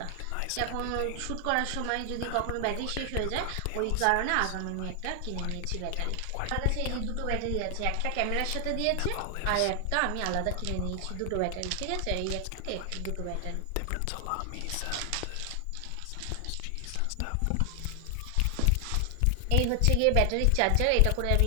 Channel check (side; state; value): both; different; correlation 0.00